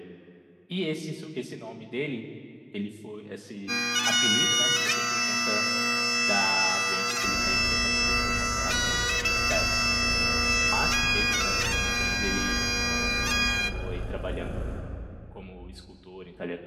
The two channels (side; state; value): both; identical; correlation 1.00